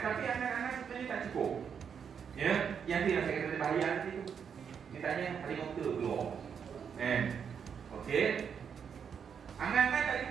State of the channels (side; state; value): left; quieter; 7.2 dB